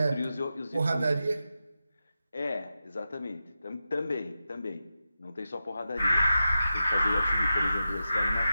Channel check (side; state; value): both; inverted; correlation -0.90